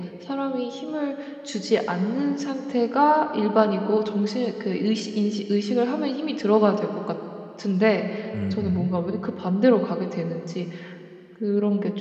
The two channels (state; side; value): identical; both; correlation 1.00